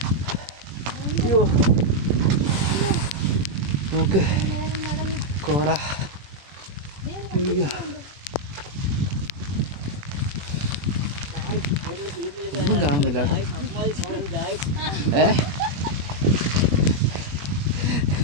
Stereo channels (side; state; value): left; late; 21 ms